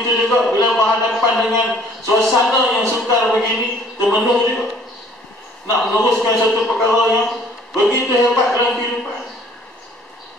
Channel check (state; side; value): normal; both; correlation 0.56